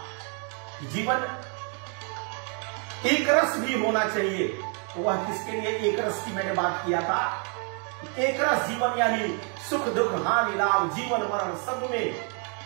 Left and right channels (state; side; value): quieter; left; 39.7 dB